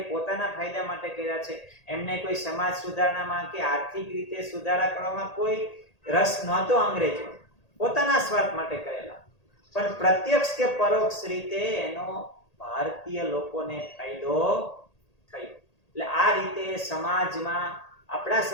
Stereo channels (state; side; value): late; right; 1.8 ms